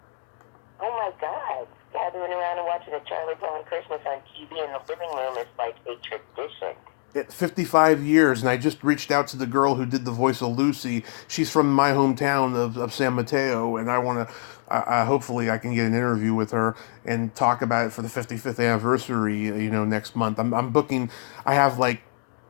Oh my God! Gathering around and watching a Charlie Brown Christmas on TV in the living room is like a tradition. 55 years, and I just reached out to the girl who did the voice of Lucy. She's from my hometown of San Mateo, and I want to, hopefully I can get an interview with her and talk about it for the 55th anniversary, next month. I'm booking, I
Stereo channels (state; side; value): silent; right; digital silence